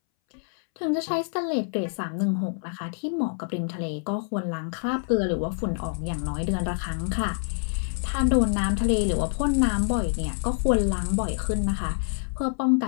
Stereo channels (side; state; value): right; silent; 61 dB below the other